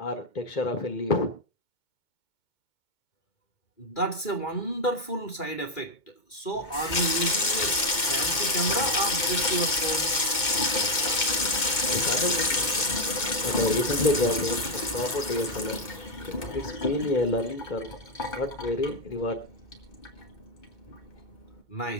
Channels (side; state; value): right; late; 2.2 ms